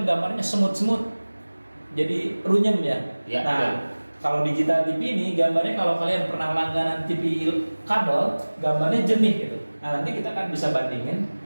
gambarnya semut-semut. Jadi runyem ya. Ya, Nah, betul. kalau digital TV ini gambarnya kalau kalian pernah langganan TV kabel, gambarnya jernih gitu. Nah, nanti kita kan bisa bandingin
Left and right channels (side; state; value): both; inverted; correlation -1.00